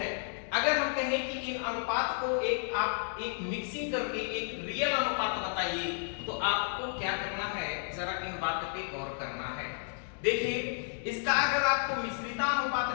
अगर हम कहें कि इन अनुपात को आप एक मिक्सिंग करके एक रियल अनुपात बताइए, तो आपको क्या करना है, जरा इन बात पे गौर करना है। देखिए, इसका अगर आपको मिश्रिता अनुपात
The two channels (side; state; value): right; silent; digital silence